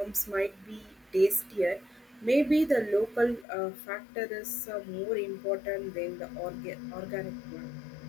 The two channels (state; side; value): drops out; right; at 3.5 s